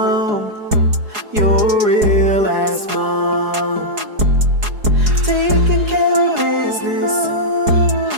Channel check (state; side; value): late; left; 4.8 ms